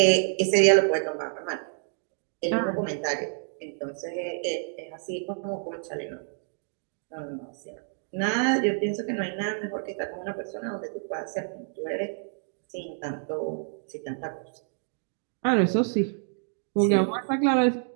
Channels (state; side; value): silent; left; 59 dB below the other